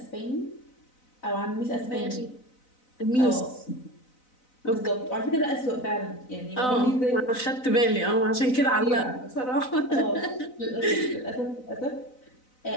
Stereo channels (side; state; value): right; late; 4.0 ms